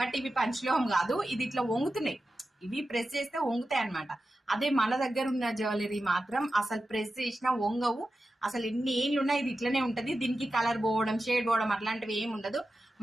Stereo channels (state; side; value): normal; both; correlation 0.92